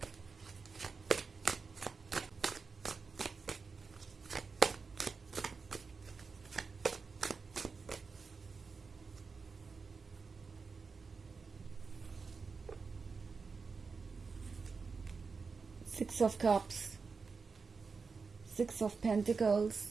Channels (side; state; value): left; quieter; 4.8 dB